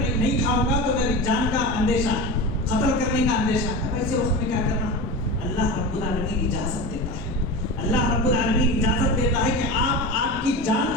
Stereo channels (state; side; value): normal; both; correlation 0.26